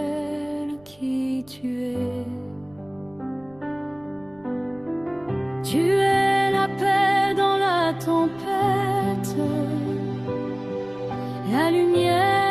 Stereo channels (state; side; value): noise; right; rumble, 28 dB below the sound